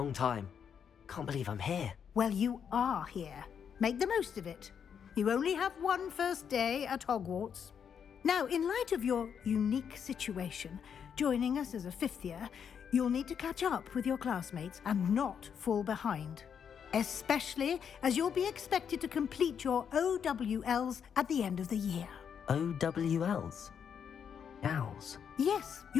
time. Can't believe I'm here. Well, you are here. Make the most of it. You only have one first day at Hogwarts. Now, in light of your unique situation, joining us as a fifth year, you'll need to catch up with your classmates and not fall behind. especially as you'll be expected to complete your OWLs at the end of the year. OWLs? Owls? Yes,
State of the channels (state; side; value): quieter; right; 7.6 dB